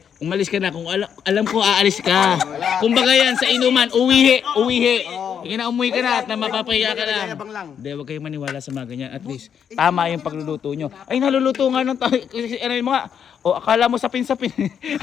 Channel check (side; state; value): right; quieter; 8.0 dB